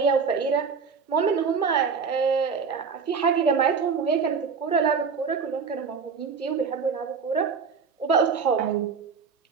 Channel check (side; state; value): left; quieter; 5.6 dB